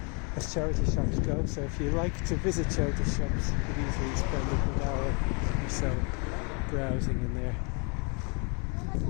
as charity shops go, so if you like to visit charity shops you could easily spend a good hour or so browsing in there.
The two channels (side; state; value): right; quieter; 34.7 dB